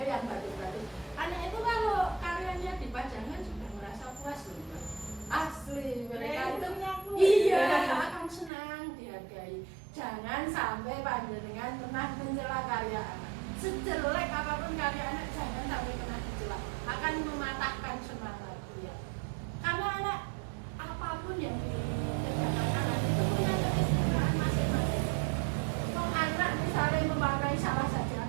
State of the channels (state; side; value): drops out; left; at 8.5 s